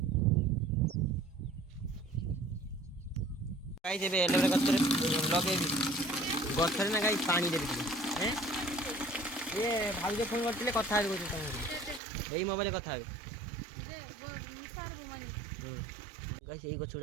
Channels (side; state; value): left; drops out; at 12.0 s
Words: ଗାଈସ୍ ଏବେ ଏଲୋଭେରା ଗଛରେ ଲଗେଇବି ଗଛରେ ନା ଗାଈ ପାଣି ଦେବି ଟିକେ ଇଏ ଭାଉଜ ଫୋନ୍ କରିଥିଲେ କଥା ହେବି କହୁଛି ତୁମକୁ ଏଇ ମୋବାଇଲରେ କଥା ହେବେ ଗାଈସ୍ ଏଇ ଗଛ